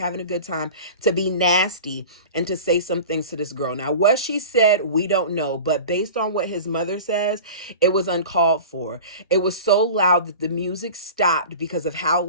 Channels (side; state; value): both; inverted; correlation -0.36